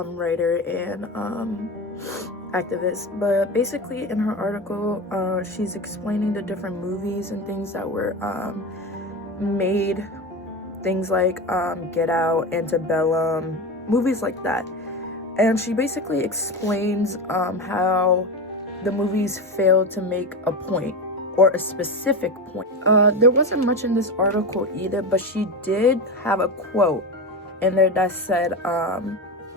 and activist, but basically in her article she's explaining the different movies and things that were made, things like Get Out, Antebellum, movies like that. And she basically explains how the movies failed to make a point or a specific point. There wasn't much in this article either, but she did have a quote in there that said,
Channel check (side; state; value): both; normal; correlation 0.21